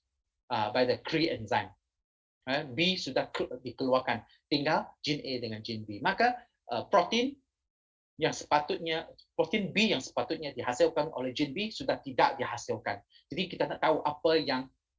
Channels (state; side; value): identical; both; correlation 1.00